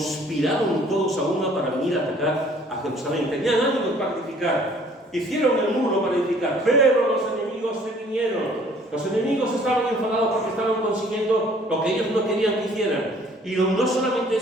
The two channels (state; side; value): normal; both; correlation 0.56